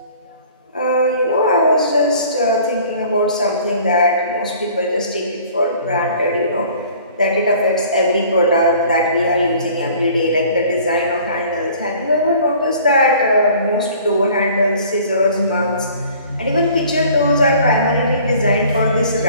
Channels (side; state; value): both; inverted; correlation -0.51